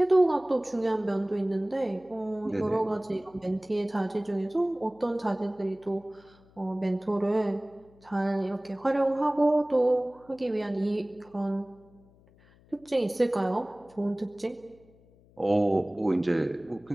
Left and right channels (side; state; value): left; noise; hum, 28 dB below the sound